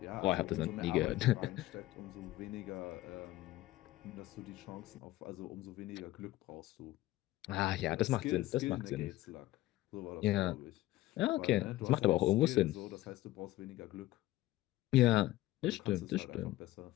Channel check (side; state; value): right; quieter; 16.7 dB